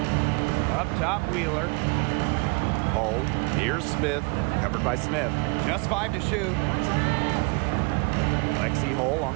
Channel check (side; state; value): left; quieter; 29.8 dB